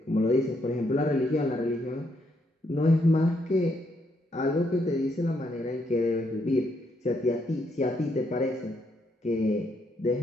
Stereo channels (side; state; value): both; normal; correlation 0.75